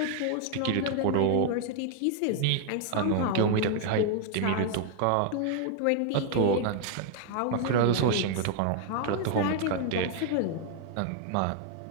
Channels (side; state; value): both; different; correlation 0.00